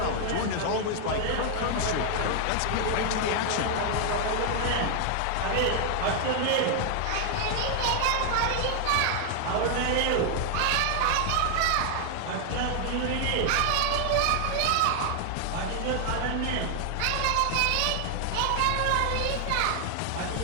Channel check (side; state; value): both; different; correlation 0.00